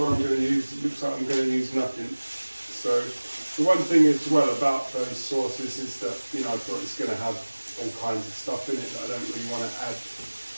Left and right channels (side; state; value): both; inverted; correlation -1.00